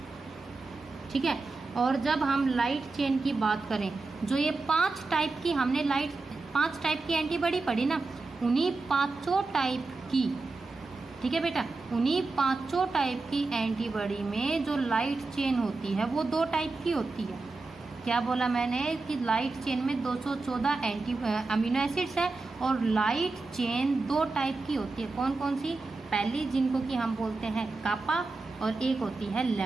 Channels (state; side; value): quieter; left; 3.7 dB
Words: ठीक है। और जब हम लाइट चेन की बात करें, जो ये 5 टाइप की हमने 5 टाइप की एंटीबॉडी पढ़ी ना, उन्हीं 5 टाइप की, ठीक है बेटा, उन्हीं 5 टाइप की एंटीबॉडी में जो लाइट चेन होती है वो 2 टाइप की होती है। क्या बोला मैंने कि लाइट चेन में 214 अमीनो एसिड्स है और लाइट चेन 2 टाइप की होती है। कौन कौन सी? पहली जिनको कि हम बोलते हैं कापा और एक होती है